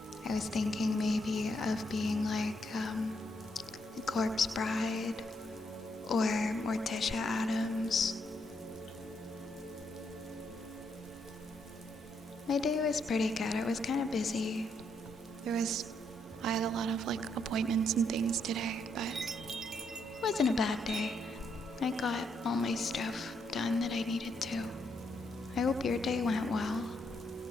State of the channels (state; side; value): normal; both; correlation 0.76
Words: I was thinking maybe of being like Corpse Bride or Morticia Adams. My day was pretty good. It was kind of busy. I had a lot of like appointments and things today, but it wasn't a bad day. I got all my stuff done that I needed to. I hope your day went well.